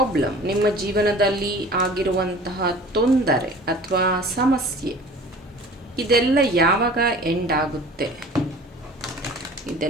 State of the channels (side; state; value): both; normal; correlation 0.44